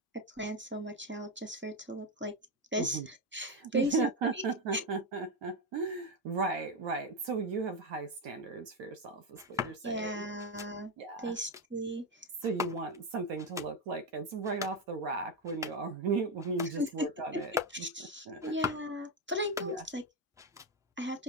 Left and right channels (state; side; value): normal; both; correlation 0.10